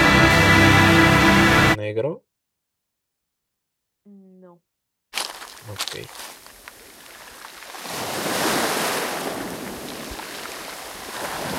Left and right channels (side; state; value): both; identical; correlation 1.00